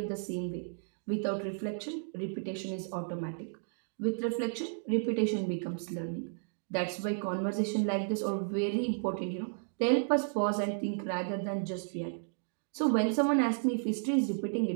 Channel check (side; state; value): left; silent; digital silence